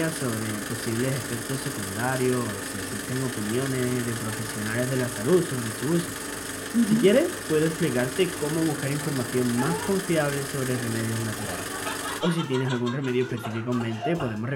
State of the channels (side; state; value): both; identical; correlation 1.00